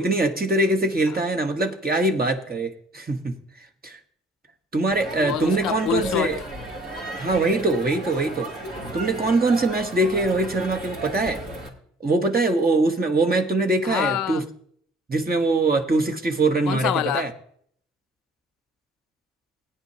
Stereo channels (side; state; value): both; normal; correlation 0.54